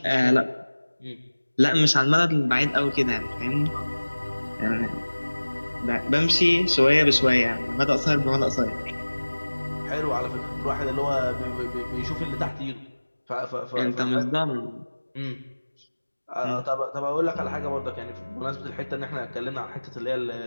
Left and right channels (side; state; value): both; inverted; correlation -1.00